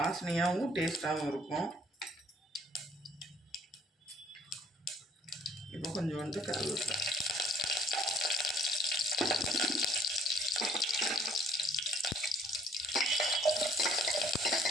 டேஸ்ட்டாகவும் இருக்கும். இப்போ கொஞ்சோண்டு கருவேப்பிலை,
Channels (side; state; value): both; normal; correlation 0.60